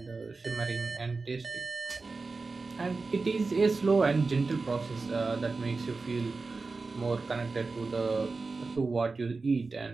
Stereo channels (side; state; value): left; quieter; 4.0 dB